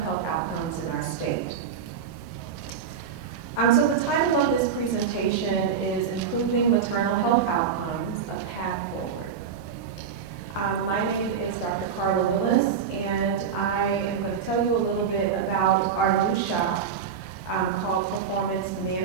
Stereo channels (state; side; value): quieter; left; 7.0 dB